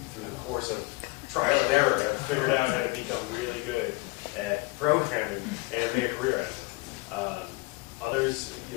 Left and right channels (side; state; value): right; quieter; 23.5 dB